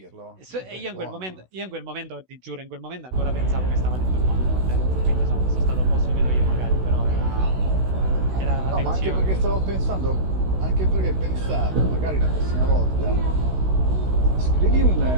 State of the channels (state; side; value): late; left; 16 ms